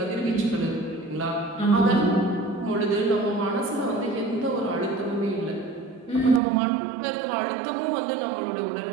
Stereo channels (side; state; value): left; drops out; at 6.4 s